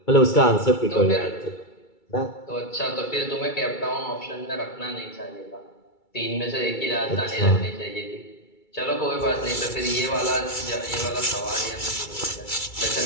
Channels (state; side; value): late; right; 2.3 ms